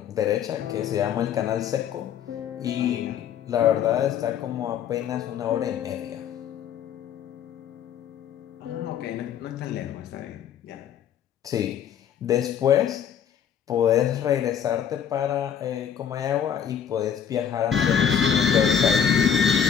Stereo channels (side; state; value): right; quieter; 8.3 dB